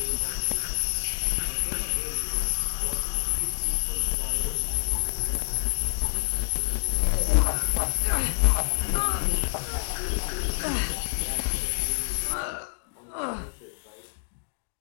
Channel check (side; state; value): right; silent; digital silence